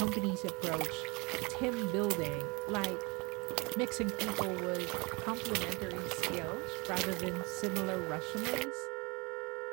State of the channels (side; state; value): left; quieter; 27.6 dB